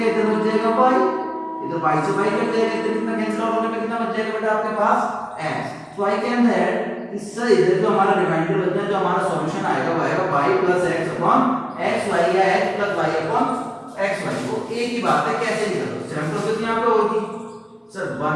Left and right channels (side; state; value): both; identical; correlation 1.00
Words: इधर बच जाएगा y, इधर y से y कट जाएगा, इधर कितना कैंसिल आउट होने पे कितना बच जाएगा बेटा आपके पास x. तो आई कैन दैट इससे इधर जो हमारा रिमाइंडर बचना है, जो हमारा सॉल्यूशन आएगा वो आएगा y plus x upon xy या x plus y upon xy. वो एक ही बात है, कैसे निकालो. सेम प्रोसेस यहां पे होगी sir.